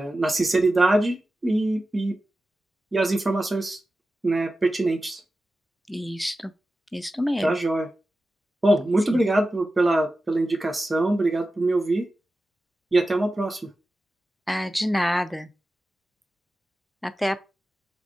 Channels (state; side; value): normal; both; correlation 0.94